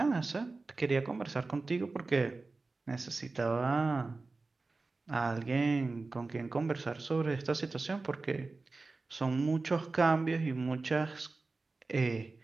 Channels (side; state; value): left; quieter; 3.6 dB